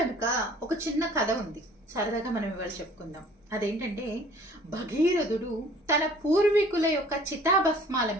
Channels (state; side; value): normal; both; correlation 0.52